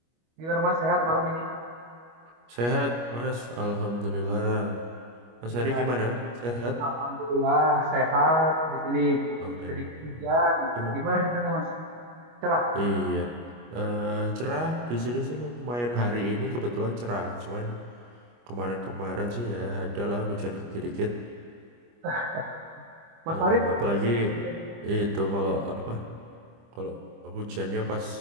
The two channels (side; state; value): left; late; 25 ms